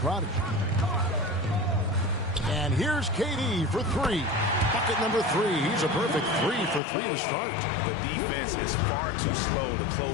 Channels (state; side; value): drops out; right; at 6.8 s